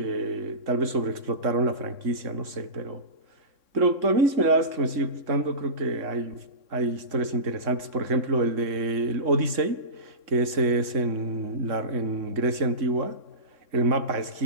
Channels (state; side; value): late; left; 3.6 ms